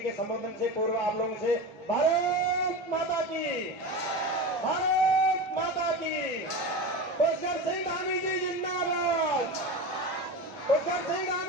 के संबोधन से पूर्व आप लोगों से भारत माता की, भारत माता की, पुष्कर सिंह धामी जी जिंदाबाद, पुष्कर सिंह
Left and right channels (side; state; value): both; normal; correlation 0.25